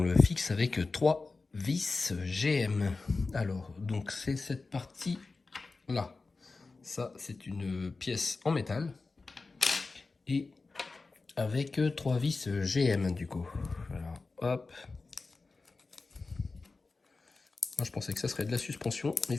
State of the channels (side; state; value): right; quieter; 3.9 dB